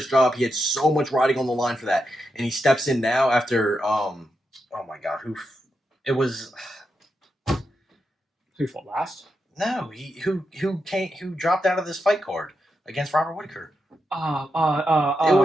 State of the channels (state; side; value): normal; both; correlation 0.86